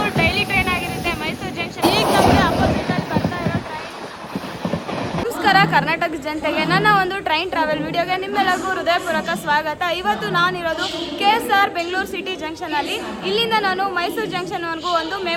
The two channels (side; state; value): both; identical; correlation 1.00